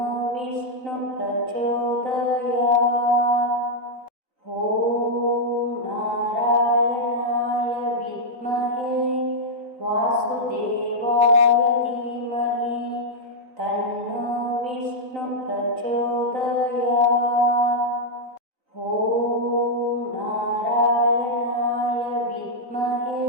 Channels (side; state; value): left; late; 3.9 ms